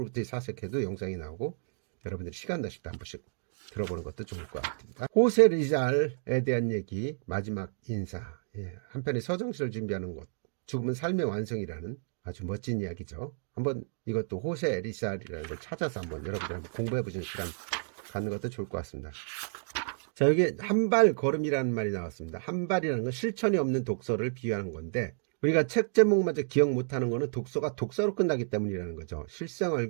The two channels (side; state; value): left; silent; digital silence